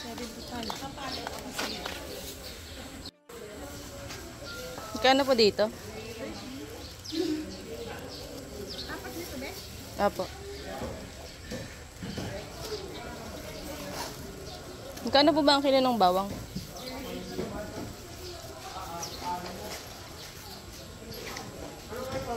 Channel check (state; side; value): identical; both; correlation 1.00